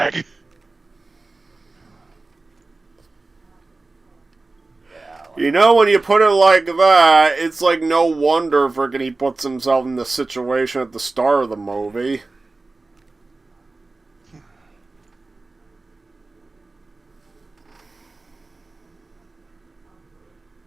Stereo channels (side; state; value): left; quieter; 3.4 dB